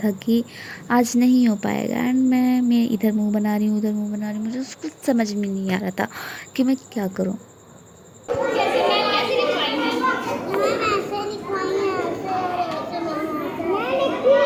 कि आज नहीं हो पाएगा। एंड मैं इधर मुंह बना रही हूँ उधर मुंह बना रही हूँ, मुझे उसको समझ में नहीं आ रहा था कि मैं क्या करूँ। कैसे मैं कैसे लिखवाई है? मैम ऐसे लिखवाई है, ऐसे लिखी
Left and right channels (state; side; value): identical; both; correlation 1.00